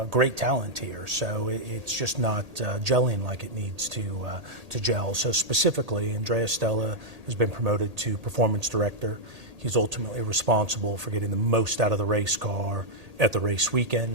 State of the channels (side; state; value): left; late; 1.8 ms